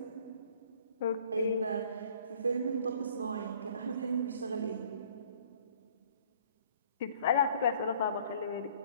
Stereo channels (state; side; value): inverted; both; correlation -0.55